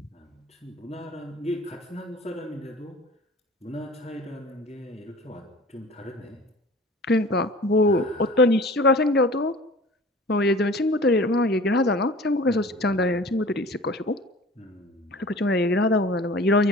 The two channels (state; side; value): normal; both; correlation 0.43